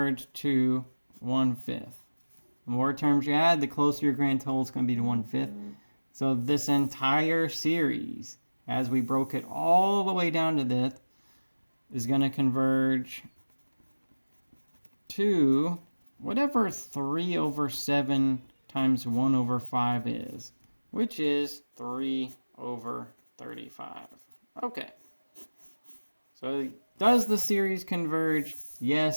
to 1/5. The more terms you add, the closer your grand total is going to be to 1/5. So this entire series, as we broke it all the way down to this, is going to converge to whatever 3 over 7 times 1 over 5 is, which is 3 over 35. Okay. So does the series converge?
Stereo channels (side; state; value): both; inverted; correlation -1.00